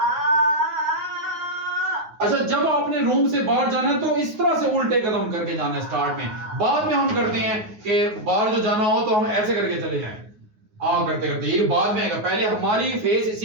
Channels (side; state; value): left; late; 9.5 ms